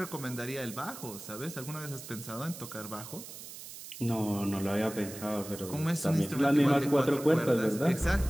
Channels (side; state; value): right; noise; hiss, 13 dB below the sound